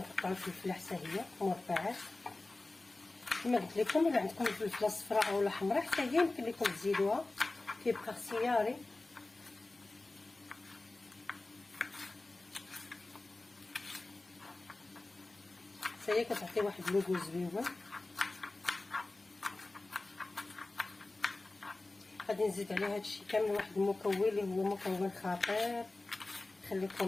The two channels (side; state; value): right; quieter; 3.0 dB